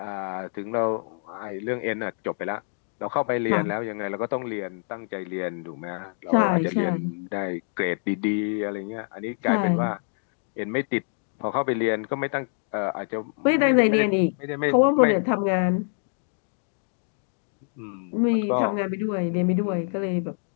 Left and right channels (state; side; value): silent; right; digital silence